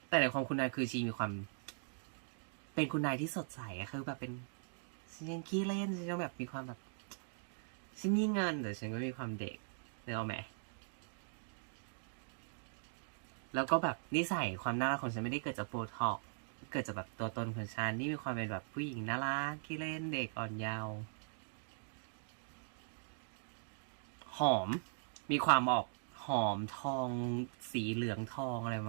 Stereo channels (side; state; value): left; silent; digital silence